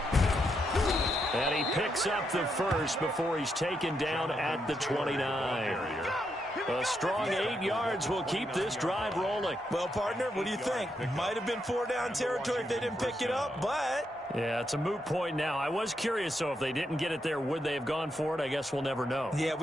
And he picks up the first before he's taken down at the 29. A strong 8 yards will keep this drive rolling. Well, partner, what do you think? Might have been 4-down territory if they didn't pick it up, but... Yeah, it's a moot point now. I was curious, so if they didn't get it there, would they have gone for it? I guess we'll never know. Yeah,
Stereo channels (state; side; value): normal; both; correlation 0.81